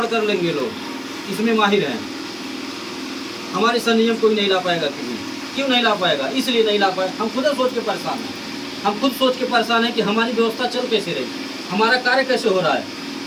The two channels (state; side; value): identical; both; correlation 1.00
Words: कर लेंगे लोग, इसमें माहिर हैं, हमारे सा नियम कोई नहीं ला पाएगा। क्यों नहीं ला पाएगा? इसलिए नहीं ला पाए, हम खुद सोच के परेशान हैं। हम खुद सोच के परेशान हैं कि हमारी व्यवस्था चल कैसे रही, हमारा कार्य कैसे हो रहा है।